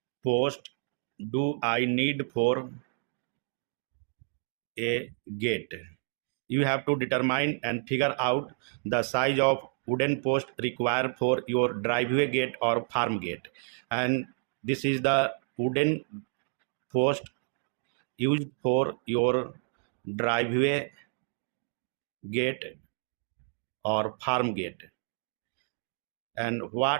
post do I need for a gate. You have to determine and figure out the size of wooden post required for your driveway gate or farm gate. And this is the wooden post used for your driveway gate or farm gate. And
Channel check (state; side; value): silent; left; 58 dB below the other